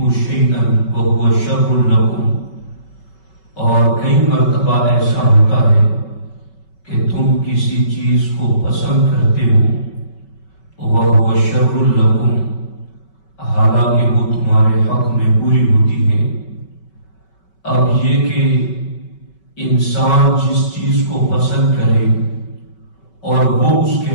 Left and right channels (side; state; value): right; late; 5.3 ms